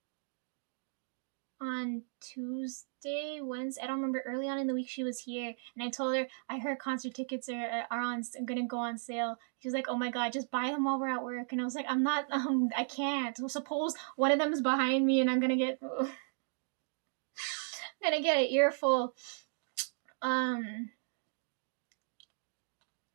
on Tuesday, Wednesday. I don't remember. Early on in the week, she was here, and I told her I heard concert tickets are gonna go on sale. She was like, "Oh my god, just buy them while we're at work." And I was like, "I'm not. I can't. So suppose one of them is behind me, and I'm gonna get gonna get an earful."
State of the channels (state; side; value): silent; left; digital silence